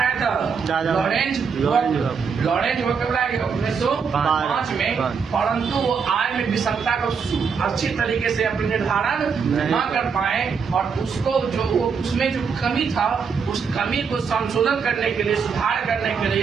था, लॉरेंज वक्र लाया गया 1905 में। परंतु वो आय में विषमता को अच्छी तरीके से अपने निर्धारण न कर पाए, और उसको जो उसमें जो कमी था उस कमी को संशोधन करने के लिए, सुधार करने के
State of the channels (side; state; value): left; quieter; 6.0 dB